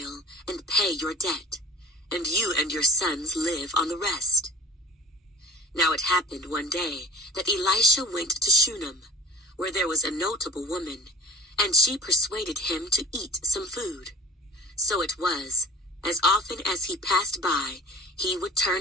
and pay your debt, and you and your sons live on the rest." Now it happened one day that Elisha went to Shunem, where there was a notable woman, and she persuaded him to eat some food. So it was, as often as he passed by, he would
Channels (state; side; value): normal; both; correlation 0.40